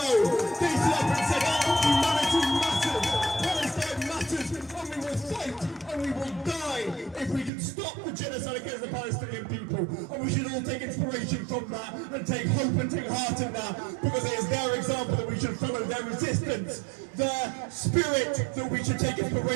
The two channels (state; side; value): drops out; left; at 7.5 s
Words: They stood up and said, oh, humanity matters, Palestine matters, and we will fight and we will die if we can stop the genocide against the Palestinian people. And we should all take inspiration from that and take hope and take heart in that, because it is their example that we should follow, their resistance, their spirit that we should take